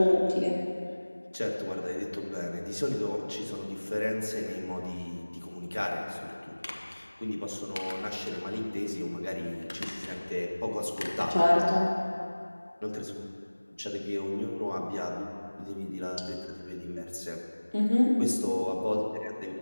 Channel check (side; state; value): both; inverted; correlation -1.00